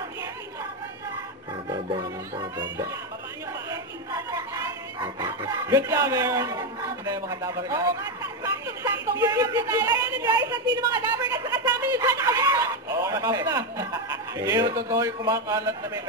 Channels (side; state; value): both; normal; correlation 0.08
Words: Good job, Aaron. Hindi yung mga Dabber Cats. Oo nga, saktong-saktong warm up na tayo. Ayan na guys, at sino mga Dabber Cats sa kasama nyo dyan? Warm up na. Hindi yung totoo yung kumakalat na may